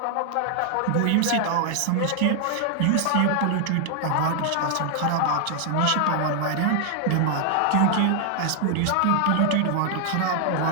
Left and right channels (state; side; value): different; both; correlation 0.00